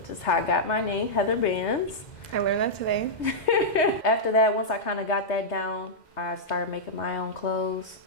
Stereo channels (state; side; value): late; right; 2.1 ms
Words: is how I got my name, heatherbands. I learned that today. After that, once I kind of got that down, I started making my own clothes,